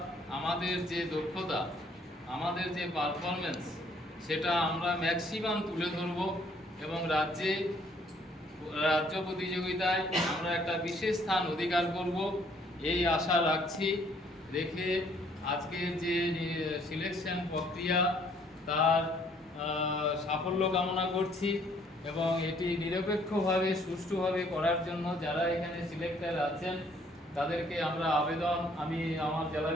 আমাদের যে দক্ষতা, আমাদের যে পারফরমেন্স, সেটা আমরা ম্যাক্সিমাম তুলে ধরব এবং রাজ্য প্রতিযোগিতায় আমরা একটা বিশেষ স্থান অধিকার করব, এই আশা রাখছি। রেখে আজকের যে সিলেকশন প্রক্রিয়া, তার সাফল্য কামনা করছি এবং এটি নিরপেক্ষভাবে সুষ্ঠুভাবে করার জন্য যারা এখানে সিলেক্টর আছেন তাদেরকে আমরা আমি আমার জেলা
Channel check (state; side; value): normal; both; correlation 0.63